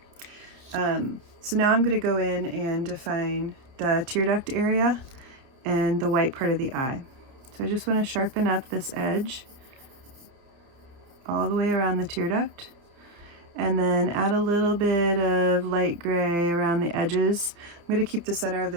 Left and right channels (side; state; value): left; late; 29 ms